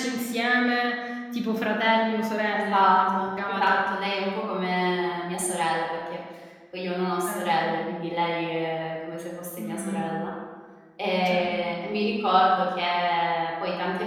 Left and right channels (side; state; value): both; identical; correlation 1.00